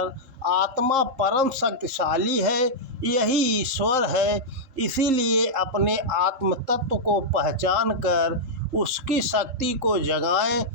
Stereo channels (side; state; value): left; late; 3.7 ms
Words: आत्मा परम शक्तिशाली है, यही ईश्वर है। इसीलिए अपने आत्म तत्व को पहचान कर उसकी शक्ति को जगाएं,